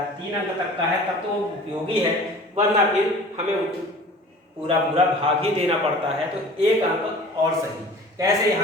3 अंक तक का है तब तो वो उपयोगी है, वरना फिर हमें पूरा पूरा भाग ही देना पड़ता है। तो 1 अंक और सही। कैसे,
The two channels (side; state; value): both; normal; correlation 0.44